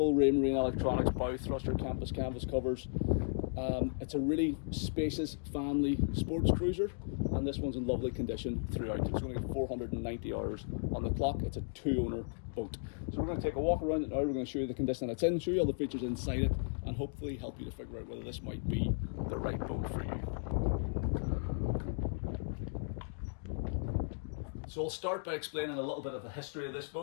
Raymarine Electronics, bow thruster, canvas covers. It's a really spacious family sports cruiser, and this one's in lovely condition throughout. It's going to get 490 hours on the clock. It's a two-owner boat. So we're going to take a walk around it now. We're going to show you the condition that it's in, show you all the features inside it, and hopefully help you to figure out whether this might be the right boat for you. So I'll start by explaining a little bit of the history of this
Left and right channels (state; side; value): silent; right; digital silence